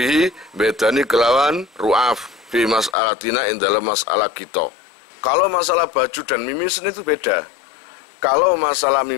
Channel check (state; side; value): drops out; right; at 3.0 s